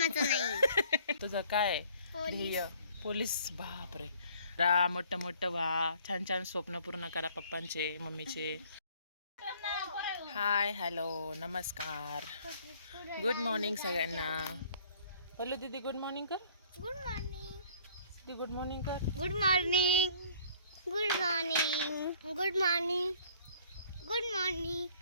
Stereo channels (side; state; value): both; inverted; correlation -0.56